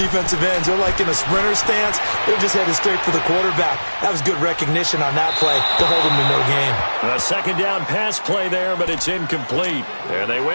ends, they're like in a sprinter stance. They're just headed straight for the quarterback. That was good recognition on that play to hold them to no gain. A second down pass play there, but it's incomplete. And they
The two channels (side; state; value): both; inverted; correlation -1.00